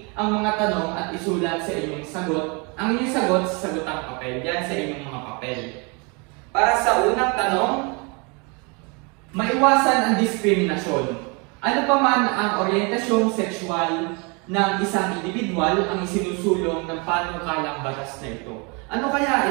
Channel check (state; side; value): quieter; left; 31.4 dB